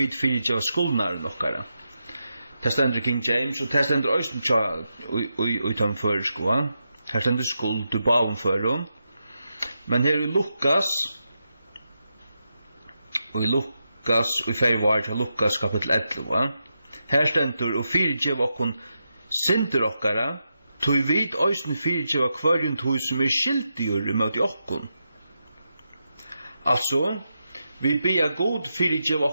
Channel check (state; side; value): inverted; both; correlation -0.87